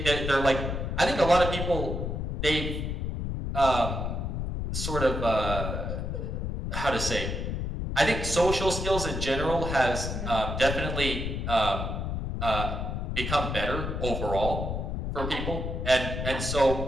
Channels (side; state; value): left; noise; rumble, 3 dB below the sound